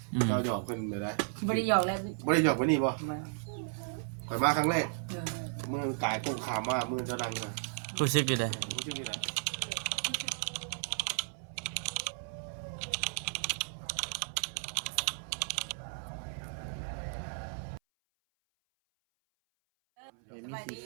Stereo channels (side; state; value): left; silent; 55 dB below the other